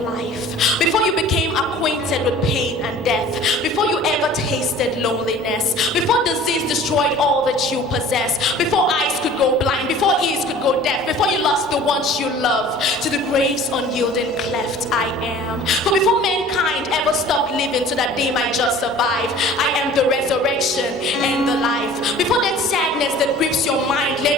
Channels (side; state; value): both; normal; correlation 0.46